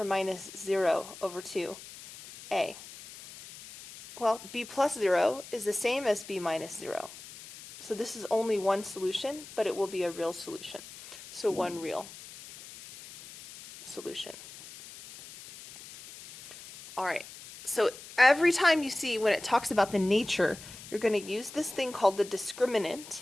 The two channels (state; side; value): noise; left; hiss, 16 dB below the sound